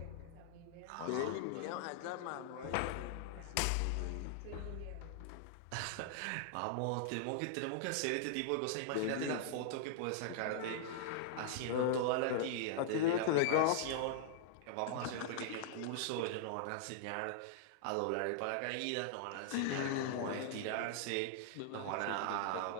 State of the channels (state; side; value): different; both; correlation -0.01